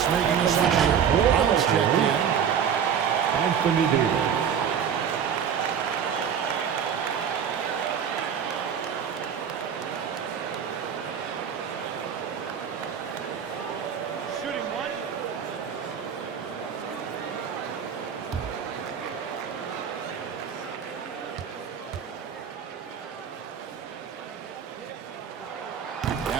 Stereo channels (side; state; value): left; quieter; 7.9 dB